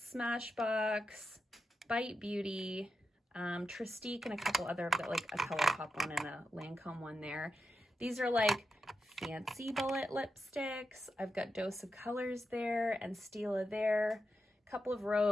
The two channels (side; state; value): both; normal; correlation 0.88